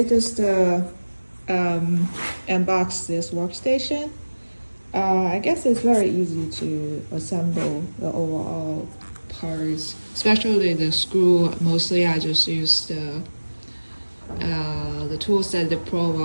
just unboxed this workstation. I guess it's very easy to assemble the overall parts, especially the screw. Mostly I just use the tools that they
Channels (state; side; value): inverted; both; correlation -1.00